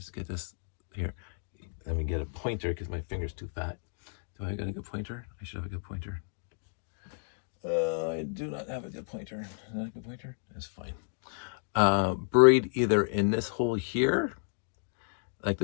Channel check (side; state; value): right; silent; digital silence